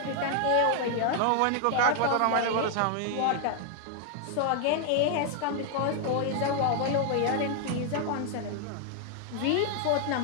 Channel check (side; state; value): both; different; correlation 0.00